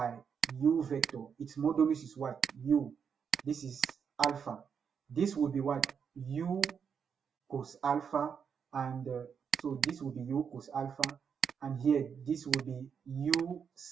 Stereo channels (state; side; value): quieter; left; 6.9 dB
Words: u vector. Its modulus is what? U. This is alpha. This will be what? U cos alpha, and so this will be u cos alpha, and here this will be u